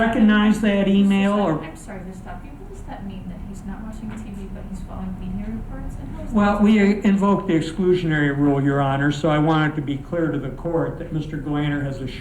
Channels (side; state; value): both; identical; correlation 1.00